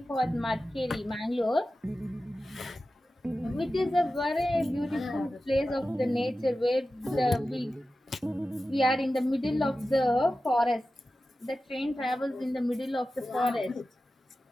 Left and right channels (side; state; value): both; normal; correlation 0.94